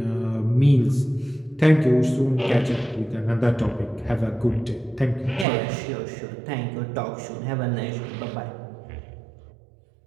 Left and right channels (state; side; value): drops out; left; at 5.5 s